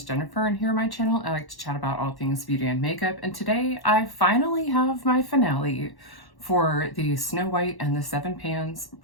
Jennifer, and here on my channel I like to chat about all things beauty and makeup, and today I finally have my finale for the Snow White and the Seven Pans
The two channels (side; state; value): right; late; 1.1 ms